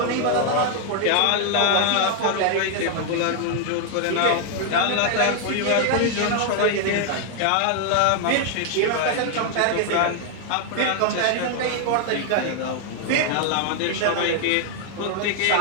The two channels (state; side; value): different; both; correlation 0.00